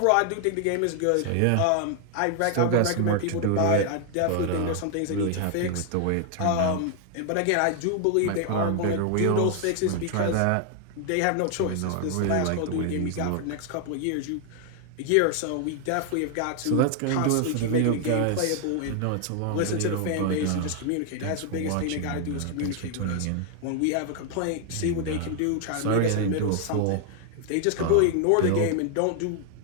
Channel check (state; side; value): different; both; correlation 0.00